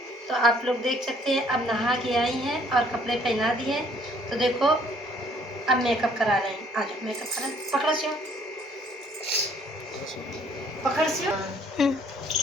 तो आप लोग देख सकते हैं, अब नहा के आई हैं और कपड़े पहना दिए। तो देखो अब मेकअप करा रहे हैं। आ जाओ मेकअप करा, पकड़ो सियो, पकड़ सियो।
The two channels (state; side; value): normal; both; correlation 0.61